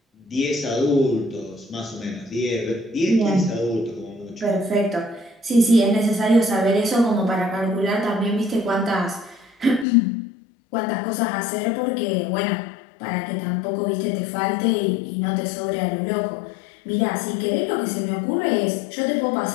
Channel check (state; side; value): drops out; right; at 9.9 s